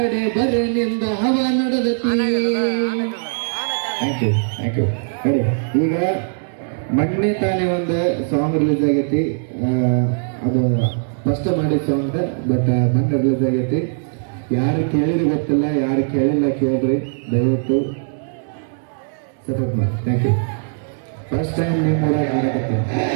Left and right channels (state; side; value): silent; left; digital silence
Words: ಬರನಿಂದ ಹವಾ ನಡೆದತಿ. Thank you thank you. ಹೇಳಿ ಈಗ ಮೊನ್ನೆ ತಾನೇ ಒಂದು ಸಾಂಗ್ ರಿಲೀಸ್ ಆಗೈತಿ, ಅದು ಫಸ್ಟ್ ಮಾಡಿದ ಸಾಂಗ್, ಬಟ್ ಮೊನ್ನೆ ರಿಲೀಸ್ ಆಗೈತಿ. ಯಾರು ಕೇಳಿರಿ ಗೊತ್ತಿಲ್ಲ, ಯಾರು ಕೇಳಿಲ್ಲ ಕೇಳ್ರಿ, ದಯವಿಟ್ಟು ಸಪೋರ್ಟ್ ಮಾಡಿ. Thank you. ಫಸ್ಟ್ ಟೈಮ್ ನಿಮ್ಮ ಊರಾಗ